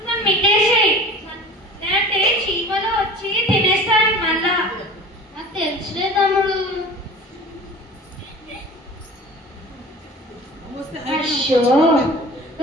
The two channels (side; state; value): both; normal; correlation 0.40